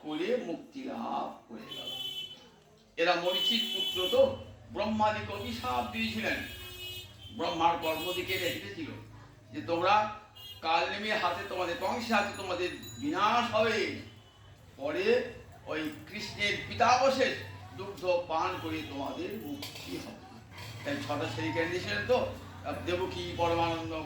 করে মুক্তি লাভ করে গেল। এরা মরিচির পুত্র, তো ব্রহ্মাদিকে অভিশাপ দিয়েছিলেন। ব্রহ্মার কর্মদিকে রেখেছিল যে তোমরা কাল নেমে হাতে, তোমাদের কংসের হাতে তোমাদের বিনাশ হবে। পরে ওই কৃষ্ণের পিতাবশেষ দুগ্ধ পান করে তোমাদের মুক্তি হবে। তাই 6টা ছেলেকে দিয়েছিলেন। তো দেবকী পরমানন্দ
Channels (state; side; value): identical; both; correlation 1.00